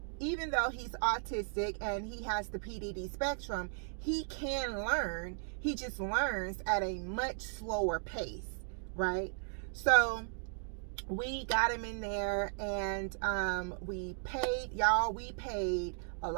even though he's autistic and he has the PDD spectrum, he can learn. He just learns at a much slower pace, right? So we got him in there, and we paid a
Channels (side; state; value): left; silent; digital silence